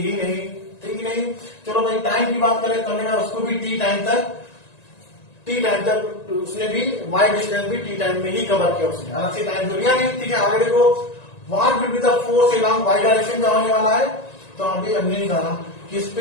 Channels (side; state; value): right; late; 1.9 ms